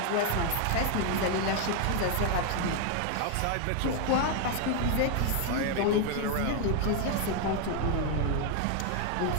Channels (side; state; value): both; different; correlation 0.01